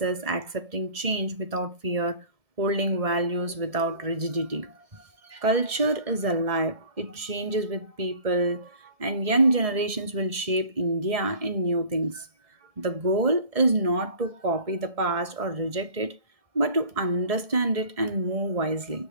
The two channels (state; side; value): late; left; 1.7 ms